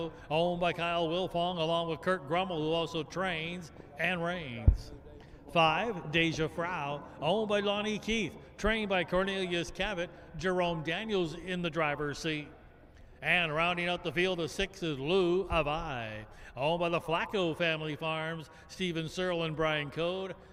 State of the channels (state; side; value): identical; both; correlation 1.00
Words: owned by Kyle Wilfong, along with Kurt Grummel, who also trains and reigns. 5, Deja Frau, owned by Lonnie Keith, trained by Cornelius Cavett. Jerome Daniels in the driver's seat. And rounding out the field of 6 is Lou Avai, owned by the Flacco family farms. Stephen Searle and Brian Code.